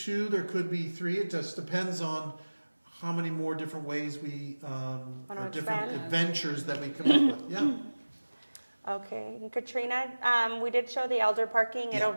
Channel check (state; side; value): inverted; both; correlation -1.00